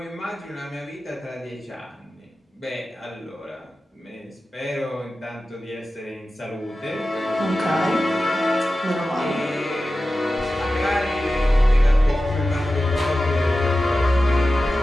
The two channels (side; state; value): both; normal; correlation 0.94